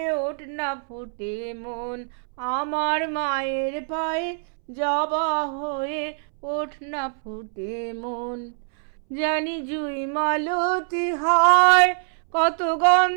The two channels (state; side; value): silent; left; 62 dB below the other